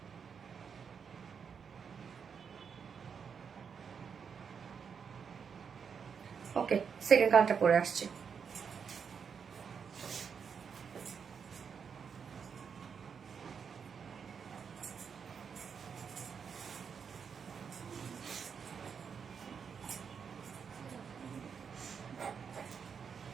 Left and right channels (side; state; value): left; quieter; 6.5 dB